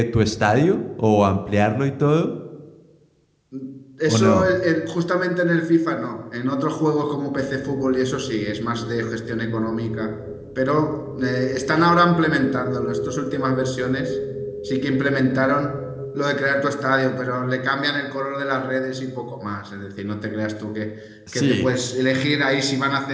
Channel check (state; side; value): identical; both; correlation 1.00